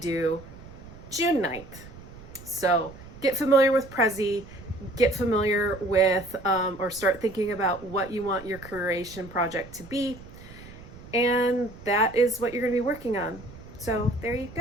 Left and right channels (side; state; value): right; noise; rumble, 17 dB below the sound